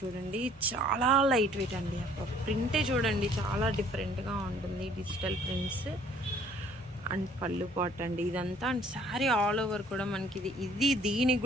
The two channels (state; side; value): normal; both; correlation 0.58